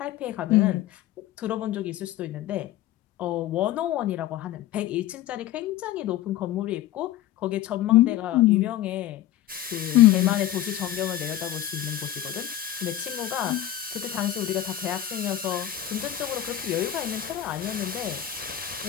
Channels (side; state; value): right; quieter; 12.4 dB